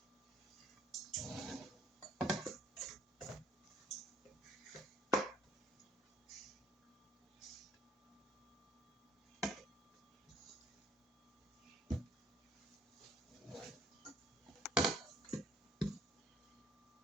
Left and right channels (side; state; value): both; normal; correlation 0.60